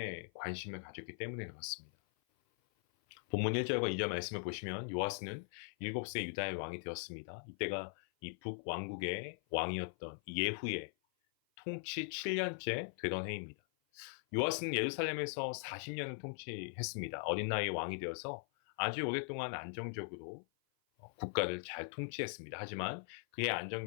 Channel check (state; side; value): silent; right; 51 dB below the other